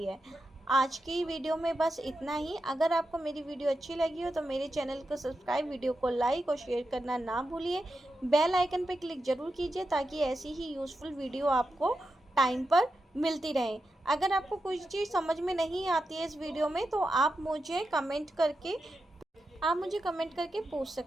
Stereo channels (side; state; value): both; normal; correlation 0.88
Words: है। आज की वीडियो में बस इतना ही। अगर आपको मेरी वीडियो अच्छी लगी हो तो मेरे चैनल को सब्सक्राइब, वीडियो को लाइक और शेयर करना ना भूलिए। बेल आइकन पर क्लिक ज़रूर कीजिए ताकि ऐसी ही यूज़फुल वीडियो आपको टाइम पर मिलती रहे। अगर आपको कोई चीज़ समझ में नहीं आती है इस वीडियो में तो आप मुझे कमेंट करके पूछ